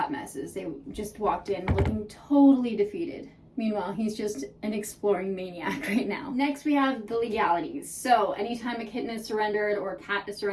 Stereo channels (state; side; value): identical; both; correlation 1.00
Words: messes. They just walked in looking totally defeated. Meanwhile, he's just an exploring maniac right now. Next, we have the legalities. So anytime a kitten is surrendered or a cat is